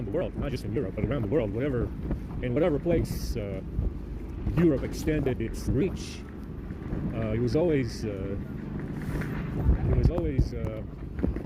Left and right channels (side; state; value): both; identical; correlation 1.00